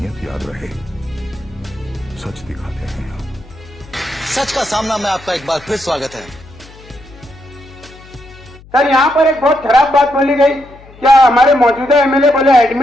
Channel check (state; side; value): noise; left; hum, 22 dB below the sound